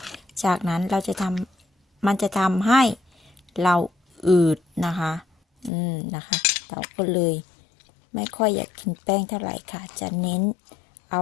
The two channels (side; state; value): right; drops out; at 5.7 s